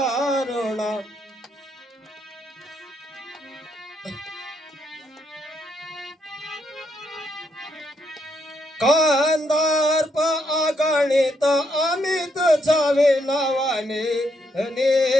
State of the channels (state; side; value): normal; both; correlation 0.76